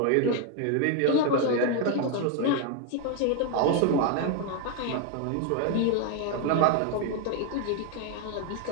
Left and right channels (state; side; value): different; both; correlation 0.01